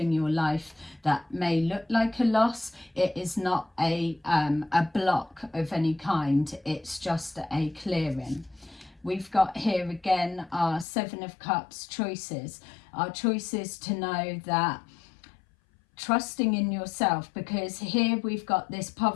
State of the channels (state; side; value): drops out; right; at 10.9 s